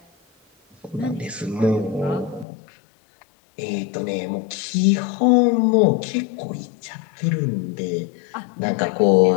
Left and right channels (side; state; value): right; drops out; at 2.5 s